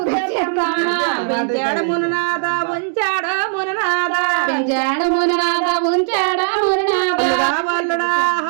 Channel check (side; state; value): left; silent; digital silence